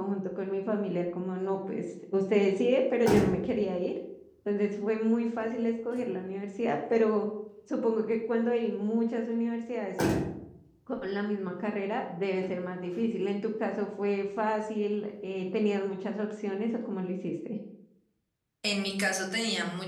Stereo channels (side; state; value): both; identical; correlation 1.00